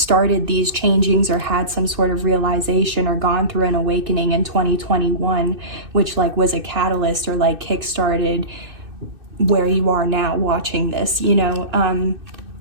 these changings or had some sort of realization or gone through an awakening in 2021, which like was a catalyst or like kickstarted where you are now watching this, you know.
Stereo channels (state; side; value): late; left; 2.6 ms